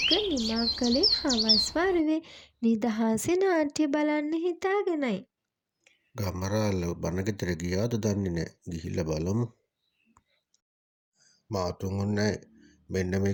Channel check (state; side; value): identical; both; correlation 1.00